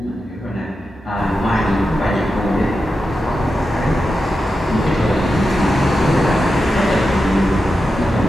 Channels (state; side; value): normal; both; correlation 0.90